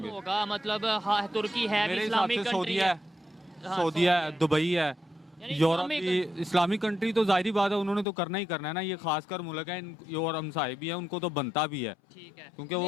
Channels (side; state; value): right; drops out; at 8.1 s